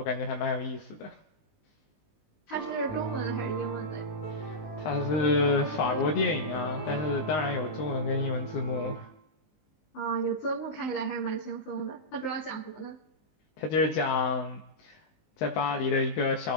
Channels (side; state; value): right; late; 19 ms